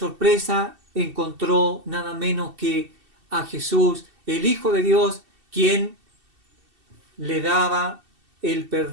encontró nada menos que a Jesús, el Hijo de Dios, quien le daba el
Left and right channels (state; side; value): late; left; 2.7 ms